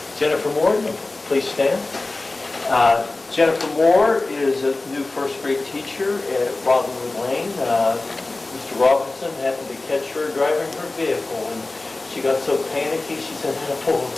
Jennifer Moore, please stand. Jennifer Moore is a new first grade teacher at Robinwood Lane. Mr. Robinson happened to catch her driving her vehicle, and she got so panicky, she said, I gotta pull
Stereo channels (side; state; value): right; quieter; 3.1 dB